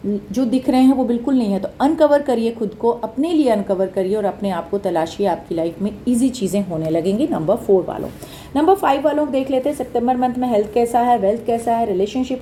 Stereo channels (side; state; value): both; identical; correlation 1.00